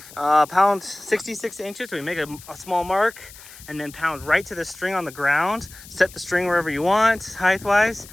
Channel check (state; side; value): noise; left; hiss, 19 dB below the sound